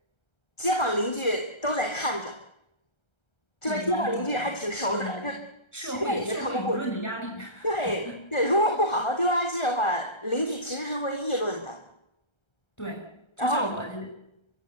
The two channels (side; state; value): right; late; 1.3 ms